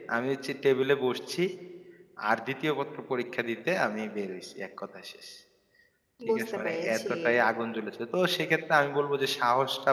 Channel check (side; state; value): both; identical; correlation 1.00